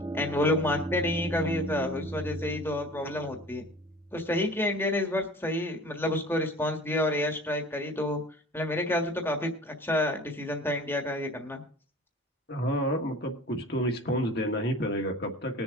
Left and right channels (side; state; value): both; normal; correlation 0.43